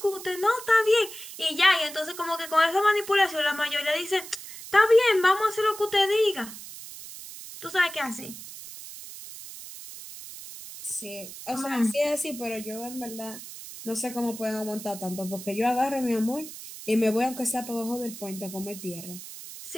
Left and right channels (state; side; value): noise; right; hiss, 13 dB below the sound